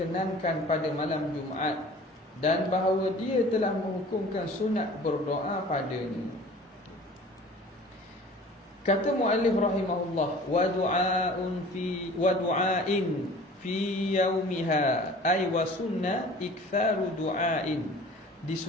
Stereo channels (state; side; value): normal; both; correlation 0.45